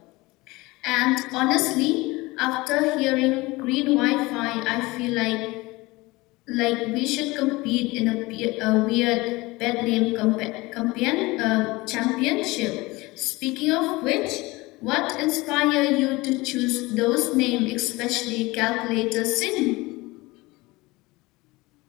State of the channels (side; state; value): right; quieter; 21.9 dB